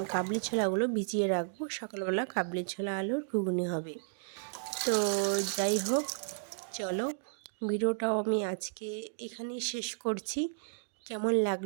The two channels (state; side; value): silent; left; digital silence